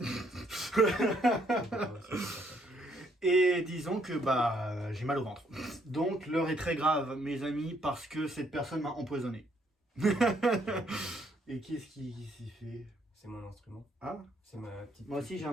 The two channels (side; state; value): both; normal; correlation 0.69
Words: Et disons que j'ai mal au ventre. Donc l'heure est très grave, mes amis, parce que cette personne m'a empoisonné. Et qu'est-ce qui s'y fait? C'est mon instrument. Ah, C'est ma petite. moi aussi j'ai